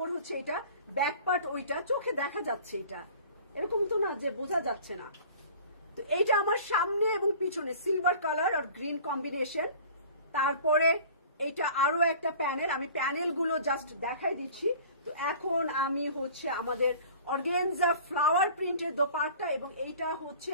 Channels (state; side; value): inverted; both; correlation -0.45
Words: হচ্ছে এটা, ব্যাক পার্ট ওইটা, চোখে দেখা যাচ্ছে, এটা এরকম তো না যে বোঝা যাচ্ছে না। তো এইটা আমার সামনে এবং পিছনে সিলভার কালার আর গ্রিন কম্বিনেশন। তারপরে এইটা আরো একটা প্যানেল, আমি প্যানেলগুলো জাস্ট দেখাই দিচ্ছি। তো এখন আমি হচ্ছে আমাদের অর্গানজা ফ্লাওয়ার প্রিন্টের দোপাট্টা, এবং এইটা হচ্ছে